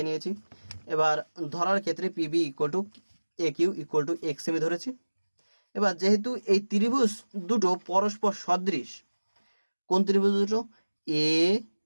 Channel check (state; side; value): inverted; both; correlation -1.00